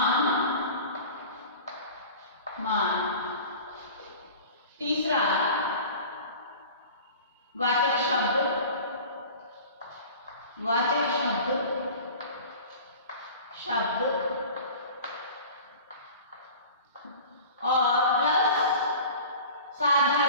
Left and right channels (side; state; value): both; inverted; correlation -0.39